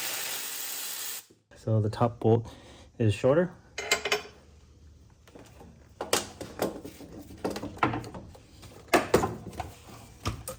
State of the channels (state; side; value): identical; both; correlation 1.00